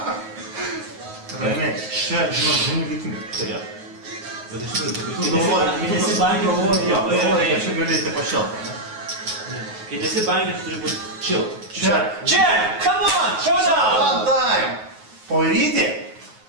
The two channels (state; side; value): late; left; 9.4 ms